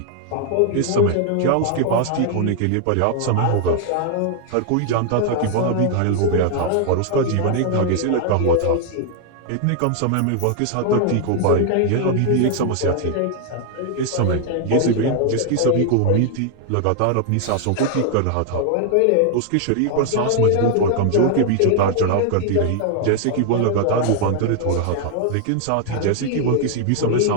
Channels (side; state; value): both; different; correlation 0.00